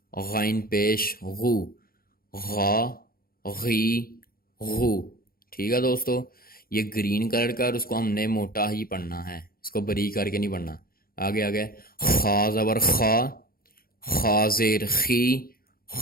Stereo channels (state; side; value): late; right; 0.43 ms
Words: غین پیش غو، غا غی غو. ٹھیک ہے دوستو، یہ گرین کلر کا، اور اس کو ہم نے موٹا ہی پڑھنا ہے، اس کو بریک کر کے نہیں پڑھنا. آگے آگے خا زبر خا، خا زیر خی،